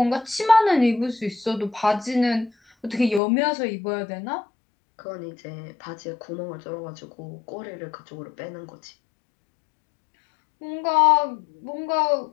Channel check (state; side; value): drops out; right; at 3.2 s